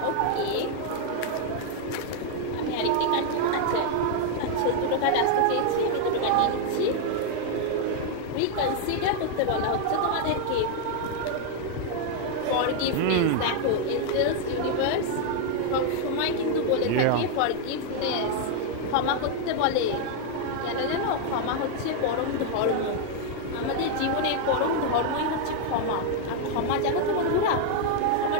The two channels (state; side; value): different; both; correlation 0.00